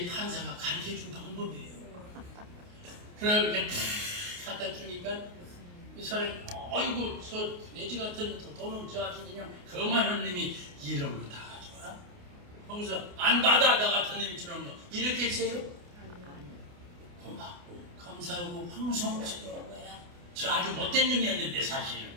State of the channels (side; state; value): left; late; 28 ms